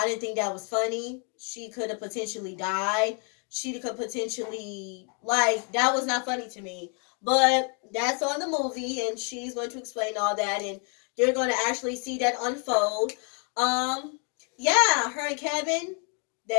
didn't think that was funny. She could have potentially died. She could potentially, that was not funny to me. But that's on the movie, and she's going to explain all that, and you're going to actually see that unfold. Yeah, her and Kevin,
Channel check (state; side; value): quieter; right; 39.1 dB